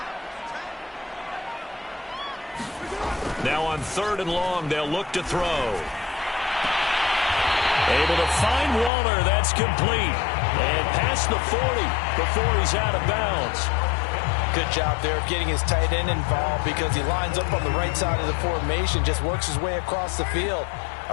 Now on 3rd and long, they'll look to throw. Able to find Waller. That's complete. And past the 40 before he's out of bounds. Good job there of getting his tight end involved because he lines up on the right side of the formation, just works his way across the field.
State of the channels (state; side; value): drops out; right; at 8.9 s